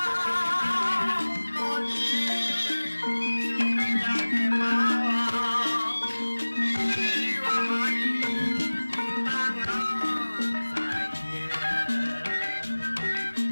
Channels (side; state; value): both; inverted; correlation -1.00